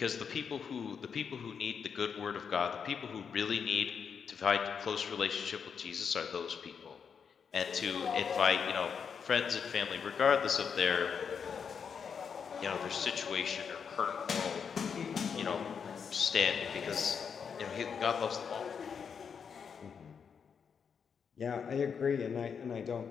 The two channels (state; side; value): quieter; right; 6.6 dB